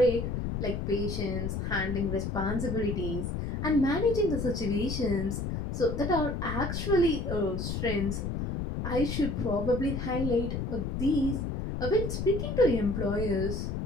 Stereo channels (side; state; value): left; noise; rumble, 3 dB below the sound